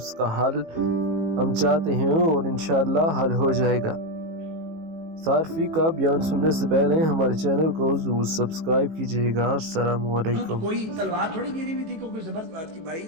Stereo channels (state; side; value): late; left; 18 ms